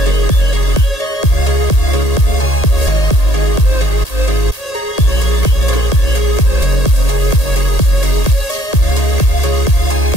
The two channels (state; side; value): late; right; 1.8 ms